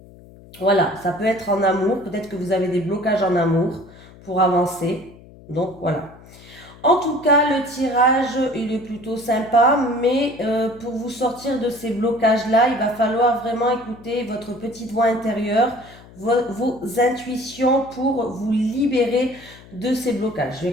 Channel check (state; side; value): noise; left; hum, 22 dB below the sound